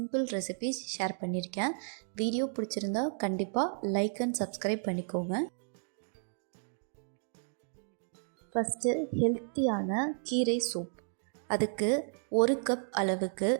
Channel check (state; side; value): silent; left; digital silence